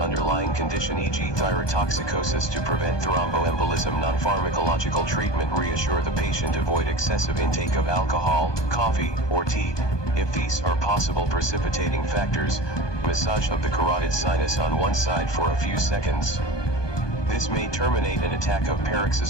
condition, e.g. thyrotoxicosis, to prevent thromboembolism. Non-pharmacological treatment: reassure the patient, avoid excessive intake of alcohol, coffee, or tea, if these are possible precipitating factors. Massage of the carotid sinus on one side for a few seconds. This may terminate an attack of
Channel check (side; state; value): right; late; 1.2 ms